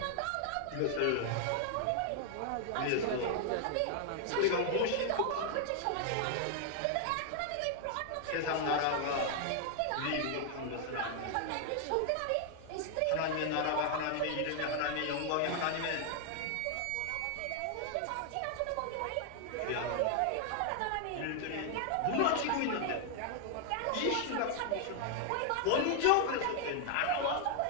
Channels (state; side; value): different; both; correlation 0.00